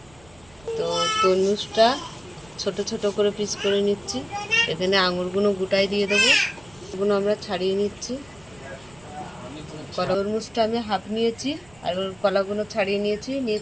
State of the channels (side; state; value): right; noise; rumble, 27 dB below the sound